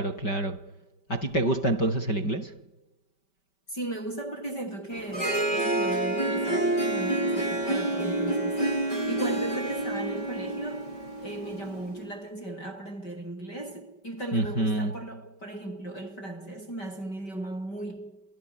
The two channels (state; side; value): late; right; 5.2 ms